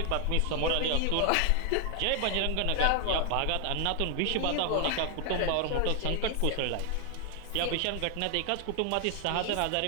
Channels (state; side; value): different; both; correlation 0.00